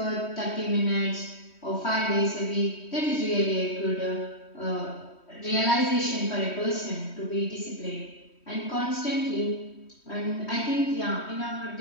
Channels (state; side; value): late; right; 3.1 ms